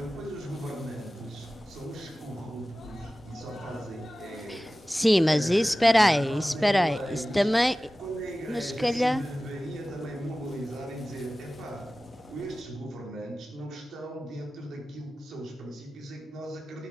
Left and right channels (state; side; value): normal; both; correlation 0.96